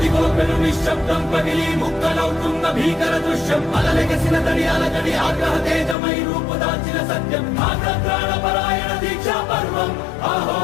అదిగో పెను నిశ్శబ్దం పగిలి ముక్కలవుతున్న భీకర దృశ్యం అలలెగసిన తడి అలజడి ఆగ్రహ తేజమై రూపుదాల్చిన సత్యం ఆగ్రహ పరాయణ దీక్షా పర్వం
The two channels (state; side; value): drops out; right; at 6.0 s